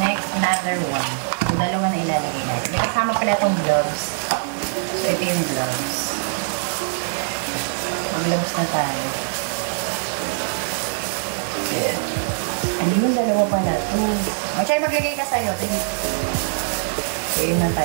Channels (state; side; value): silent; left; 64 dB below the other